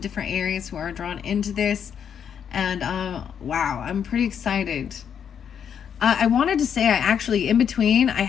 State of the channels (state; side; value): quieter; right; 8.0 dB